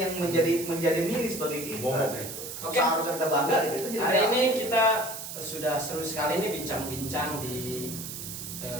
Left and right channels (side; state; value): right; noise; hiss, 8 dB below the sound